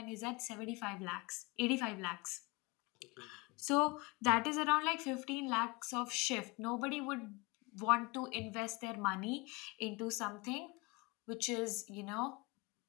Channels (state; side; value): quieter; right; 25.7 dB